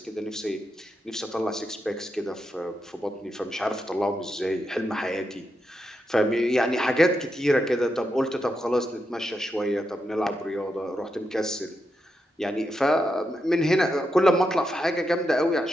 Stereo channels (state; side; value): normal; both; correlation 0.85